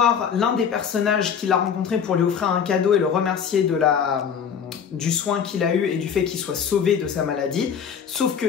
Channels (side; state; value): right; quieter; 7.4 dB